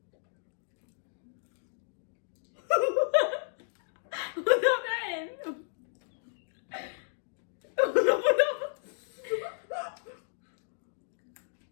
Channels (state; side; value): silent; right; digital silence